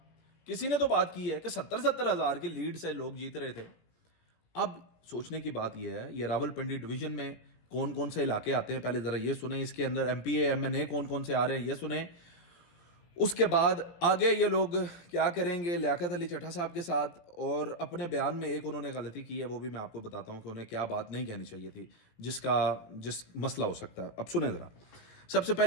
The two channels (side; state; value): right; late; 18 ms